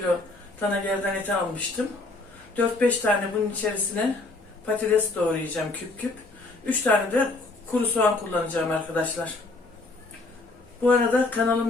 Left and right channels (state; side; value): quieter; right; 3.2 dB